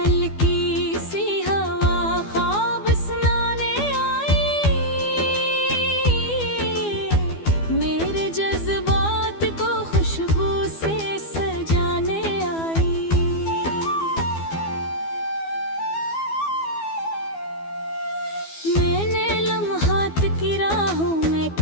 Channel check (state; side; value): late; right; 12 ms